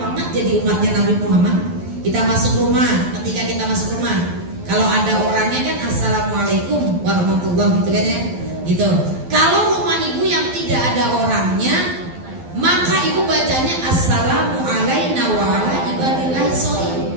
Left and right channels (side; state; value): left; late; 12 ms